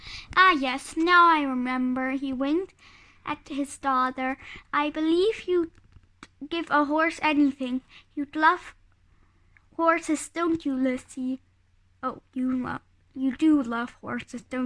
"Ah, yes, now I remember," he winked at his daughter. "I believe you'd give a horse anything. You'd love horses, don't you, Lizzie?" "Oh, you do love horses,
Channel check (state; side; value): identical; both; correlation 1.00